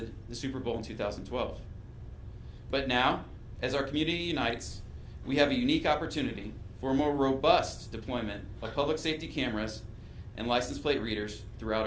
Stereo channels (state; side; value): identical; both; correlation 1.00